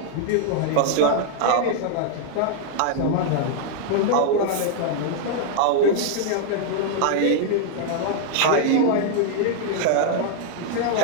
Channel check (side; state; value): both; different; correlation 0.00